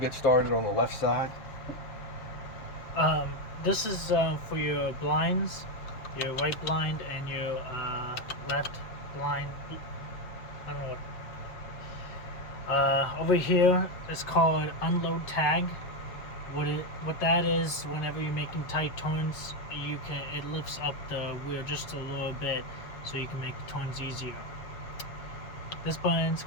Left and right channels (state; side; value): late; right; 7.5 ms